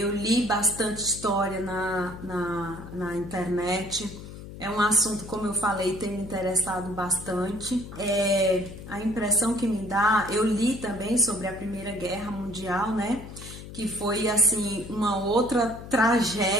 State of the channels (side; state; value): left; noise; hum, 13 dB below the sound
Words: li bastante história na internet. É um assunto, como eu falei, tem me interessado bastante. A impressão que me dá, eu li também sobre a Primeira Guerra Mundial, né? Que foi, assim, uma outra